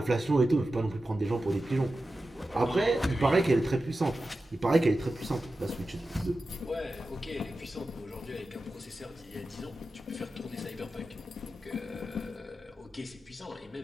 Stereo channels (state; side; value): normal; both; correlation 0.93